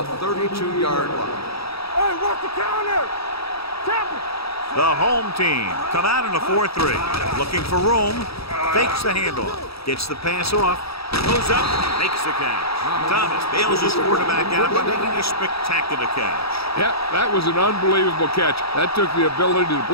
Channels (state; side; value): late; right; 0.77 ms